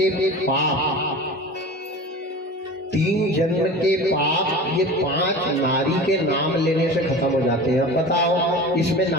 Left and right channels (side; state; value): both; normal; correlation 0.35